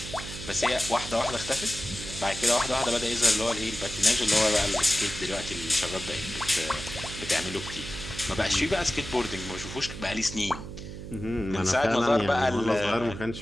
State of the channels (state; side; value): noise; right; hum, 10 dB below the sound